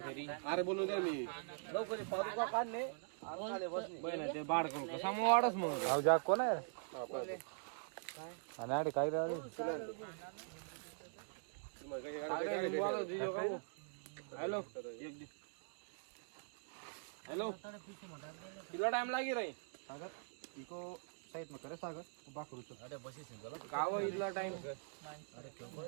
अरे बोलू द्या मी काढणे जा कोण आहे आणि अरे काय रे हॅलो हेलो कितना टाइम लागी रही सागर इको साइड में करे सागर बा करू तो अरे बसी सिंगल गाव इतना टाइम अरे क्यों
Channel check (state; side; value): silent; left; digital silence